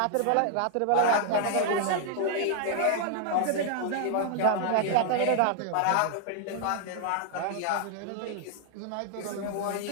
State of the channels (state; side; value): different; both; correlation 0.00